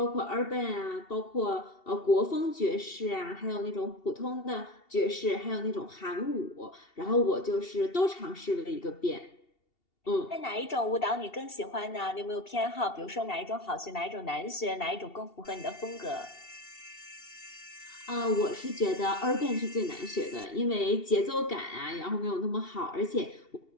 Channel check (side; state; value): right; late; 2.7 ms